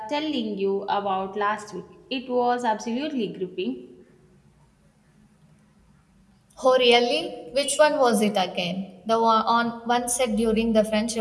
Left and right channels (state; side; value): identical; both; correlation 1.00